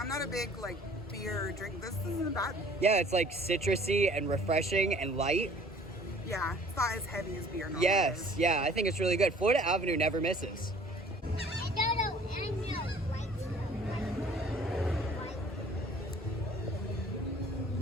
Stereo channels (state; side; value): normal; both; correlation 0.53